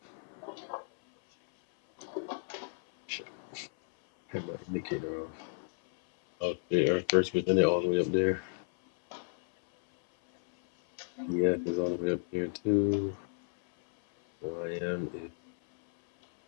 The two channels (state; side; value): silent; right; 56 dB below the other